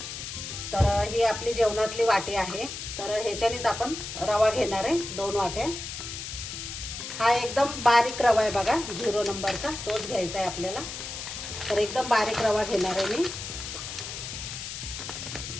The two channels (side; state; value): left; noise; hiss, 8 dB below the sound